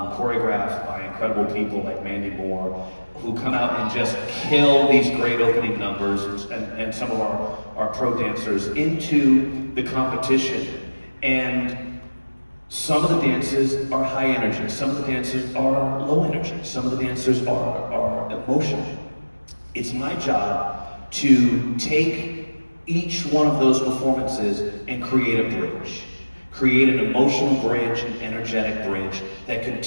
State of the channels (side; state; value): both; inverted; correlation -1.00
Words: by incredible people like Mandy Moore, who come out and just kill these great opening numbers, and some of our pro dancers into the competition. And some of the dances are high energy, some of the dances are low energy, some of the dancers are emotional. It's my job to take each one of those performances and create a bridge. Create an emotional bridge, an energetic bridge that